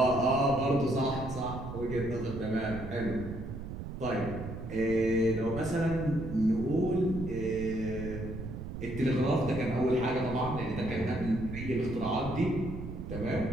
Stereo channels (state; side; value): noise; right; rumble, 8 dB below the sound